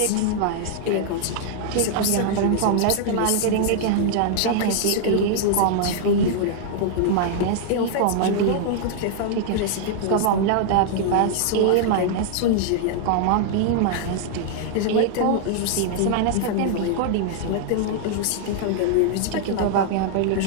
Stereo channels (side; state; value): both; different; correlation 0.00